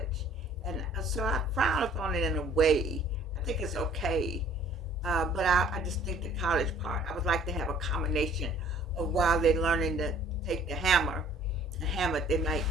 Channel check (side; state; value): both; normal; correlation 0.54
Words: And so I frown upon it in a way. I think it's okay, but I just think the college part, I would like to have a combination of while they're learning to take the hammer and hammer, they might